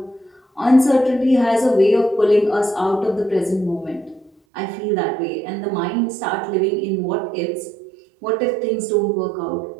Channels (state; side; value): drops out; left; at 4.3 s